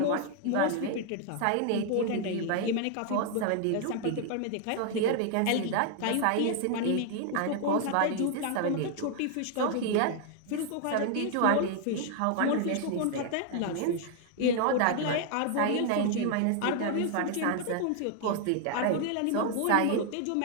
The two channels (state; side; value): different; both; correlation 0.00